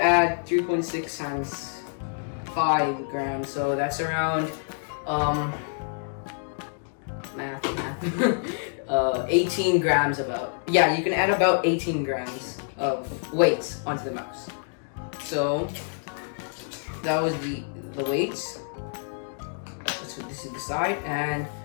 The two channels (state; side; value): silent; right; digital silence